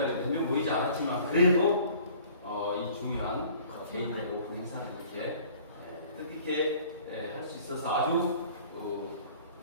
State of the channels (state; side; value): inverted; both; correlation -0.51